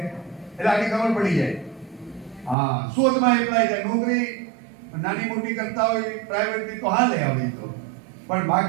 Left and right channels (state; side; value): drops out; left; at 2.6 s